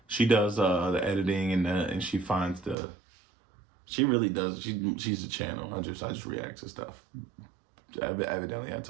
She does the editing and she finds she really does. She's a channel. I just react to stuff. Evidently, I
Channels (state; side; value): drops out; left; at 2.8 s